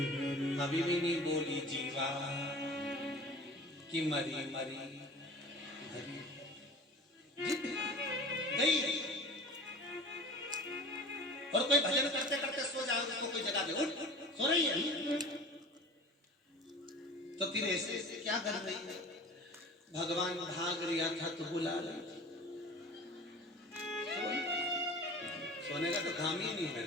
हरि, अभी भी नहीं बोली जीवा कि मरी मरी गई। और कोई भजन करते करते सो जाओ, उसको कोई जगह दे, उठ सो रही है तो फिर ऐसे क्या कर रही है? भगवान भाग रिया था तो बुला ली, सोने का तो काम ही नहीं है।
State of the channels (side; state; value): both; normal; correlation 0.39